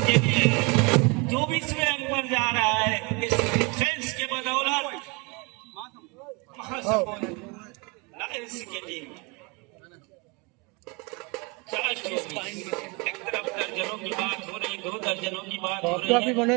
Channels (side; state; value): left; quieter; 28.2 dB